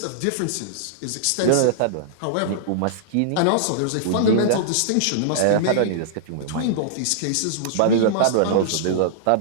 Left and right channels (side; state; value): both; different; correlation -0.02